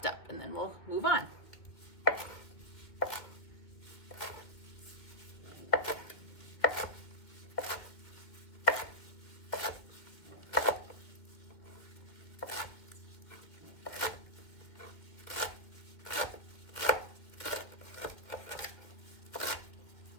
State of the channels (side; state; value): right; late; 2.3 ms